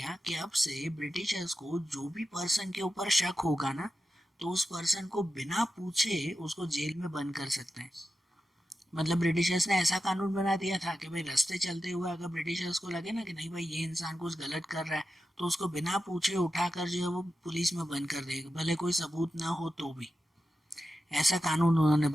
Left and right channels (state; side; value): normal; both; correlation 0.91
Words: कि अब से ब्रिटिशर्स को जो भी पर्सन के ऊपर शक होगा ना, तो उस पर्सन को बिना पूछे उसको जेल में बंद कर सकते हैं। मतलब ब्रिटिशर्स ने ऐसा कानून बना दिया था कि भाई रास्ते चलते हुए अगर ब्रिटिशर्स को लगे ना कि नहीं भाई ये इंसान कुछ गलत कर रहा है, तो उसको बिना पूछे उठाकर जो है वो पुलिस में बंद कर देगा, भले कोई सबूत ना हो तो भी। ऐसा कानून उन्होंने